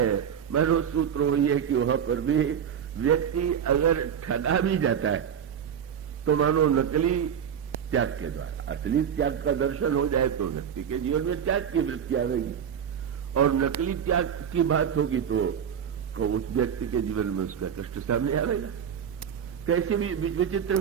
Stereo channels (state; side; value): quieter; left; 8.3 dB